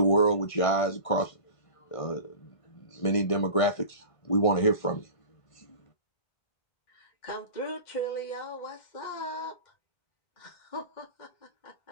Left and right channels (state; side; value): late; right; 1.5 ms